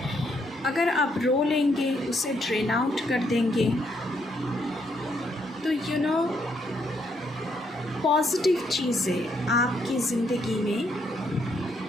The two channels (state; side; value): normal; both; correlation 0.74